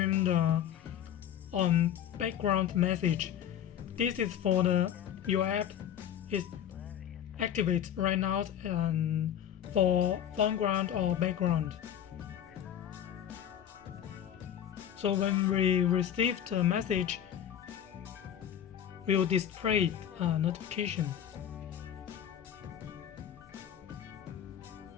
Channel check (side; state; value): right; quieter; 9.9 dB